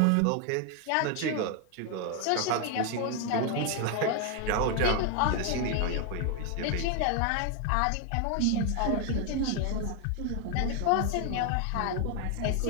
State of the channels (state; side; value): different; both; correlation 0.01